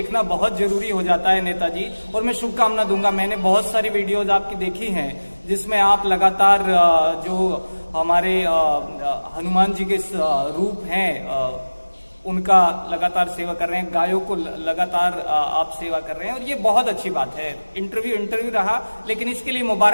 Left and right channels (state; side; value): inverted; both; correlation -1.00